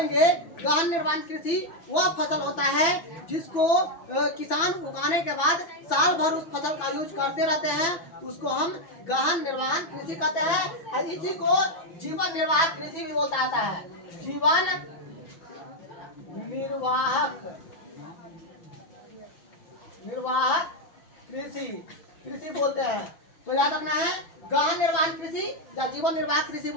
गहन निर्वाहन कृषि वह फसल होता है जिसको किसान उगाने के बाद साल भर उस फसल का यूज करते रहते हैं, उसको हम गहन निर्वाहन कृषि कहते हैं। और इसी को जीवन निर्वाह कृषि भी बोलता आता है। जीवन निर्वाह कृषि बोलते हैं। तो याद रखना है, गहन निर्वाहन कृषि या जीवन निर्वाह कृषि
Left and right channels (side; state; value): right; late; 6.0 ms